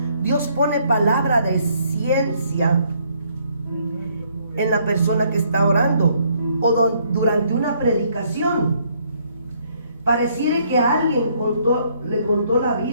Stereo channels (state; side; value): inverted; both; correlation -0.67